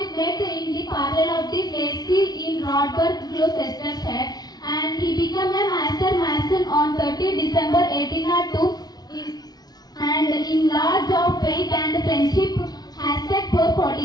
met in the parallel of the Placey in Rodberg, Gloucestershire, and he became a master mason on 30 December 1802 and in large of faith and friendship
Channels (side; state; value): right; late; 0.19 ms